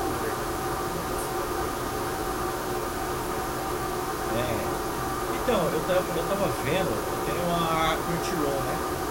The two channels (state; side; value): identical; both; correlation 1.00